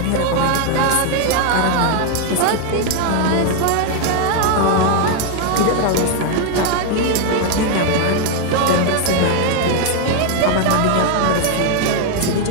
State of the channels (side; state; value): both; different; correlation 0.01